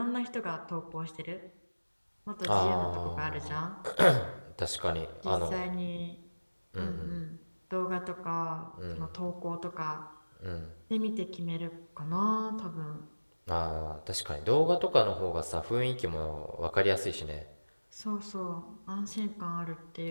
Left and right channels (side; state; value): both; inverted; correlation -1.00